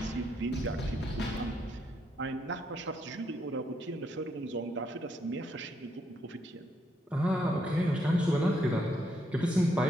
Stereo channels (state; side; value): normal; both; correlation 0.76